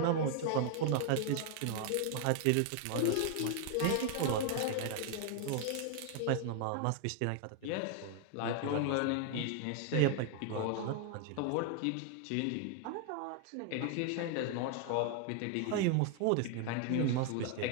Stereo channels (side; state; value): both; different; correlation 0.00